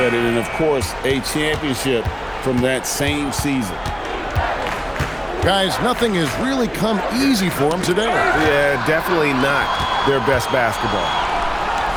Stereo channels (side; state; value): both; identical; correlation 1.00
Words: and of course, a championship from that same season. Guys, nothing has really come easy for him today. Yeah, definitely not their best basketball.